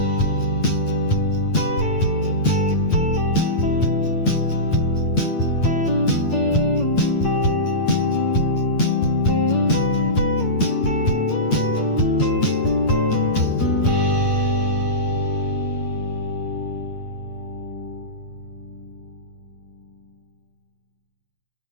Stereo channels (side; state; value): right; late; 8.7 ms